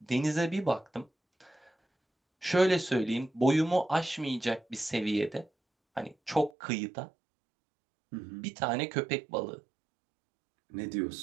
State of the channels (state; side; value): drops out; left; at 6.5 s